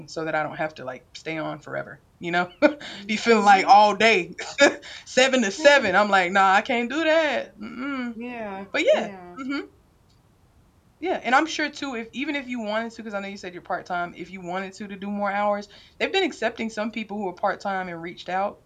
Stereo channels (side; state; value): both; identical; correlation 1.00